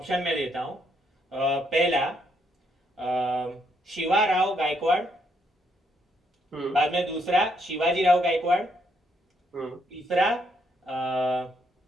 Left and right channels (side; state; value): both; normal; correlation 0.73